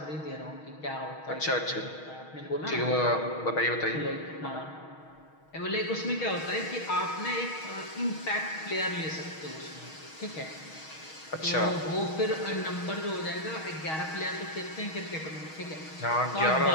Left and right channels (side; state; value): right; late; 6.3 ms